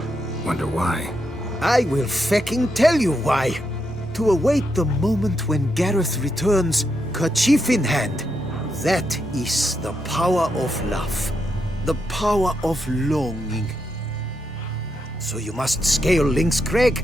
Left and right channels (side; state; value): both; normal; correlation 0.82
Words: Wonder why. I will fecking tell you why. To await the moment when Gareth returns, kerchief in hand. That is the power of love. The power of longing. So you must scale Lynx